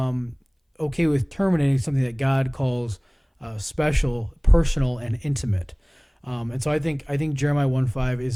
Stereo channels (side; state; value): both; identical; correlation 1.00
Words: okay with terminating something that God calls special, personal, and intimate. And so I think Jeremiah 1:5